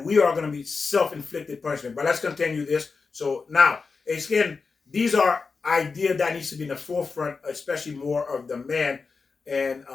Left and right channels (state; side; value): quieter; right; 4.7 dB